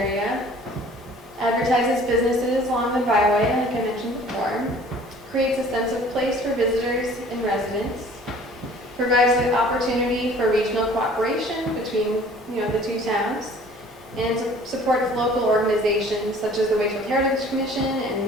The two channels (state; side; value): normal; both; correlation 0.51